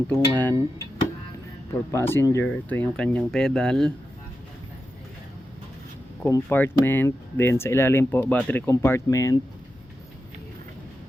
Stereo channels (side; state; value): both; normal; correlation 0.90